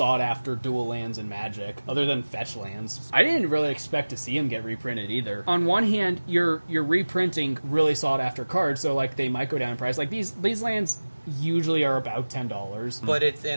dual lands in Magic, other than fetch lands. I didn't really expect to see them get reprinted either. On one hand, you're reprinting really sought-after cards, so like they might go down in price. Like these lands usually are about $10. But it's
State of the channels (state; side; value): inverted; both; correlation -1.00